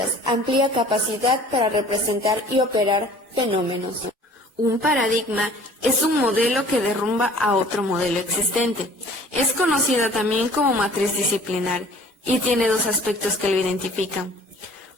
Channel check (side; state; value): both; normal; correlation 0.50